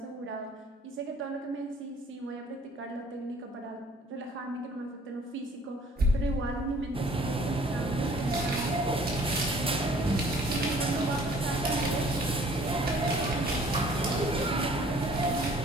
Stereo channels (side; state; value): both; normal; correlation 0.55